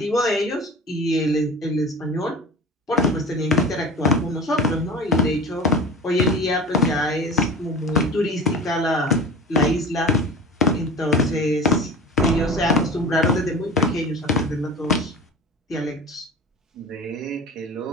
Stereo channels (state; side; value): normal; both; correlation 0.35